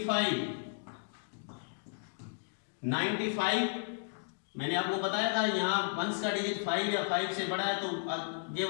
95 मैंने आपको बताया था यहाँ वंस का डिजिट 5 या 5 से बड़ा है तो आगे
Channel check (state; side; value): silent; right; digital silence